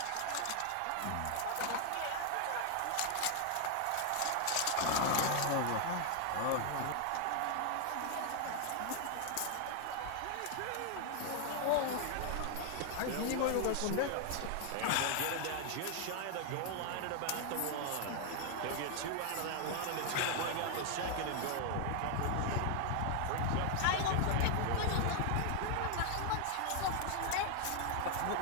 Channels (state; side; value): different; both; correlation 0.00